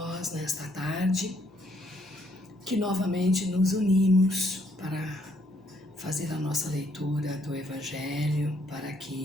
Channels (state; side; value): noise; left; hum, 29 dB below the sound